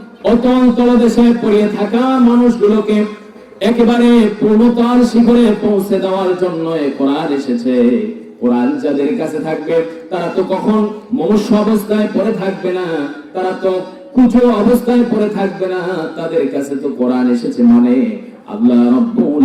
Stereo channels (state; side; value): identical; both; correlation 1.00